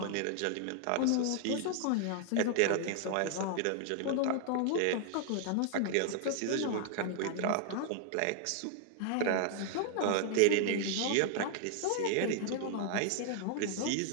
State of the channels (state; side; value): different; both; correlation 0.00